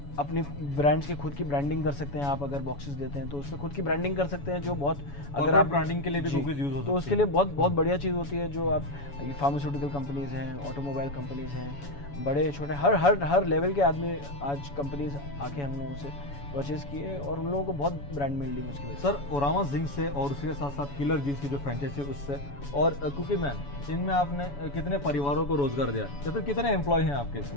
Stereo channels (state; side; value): late; right; 7.1 ms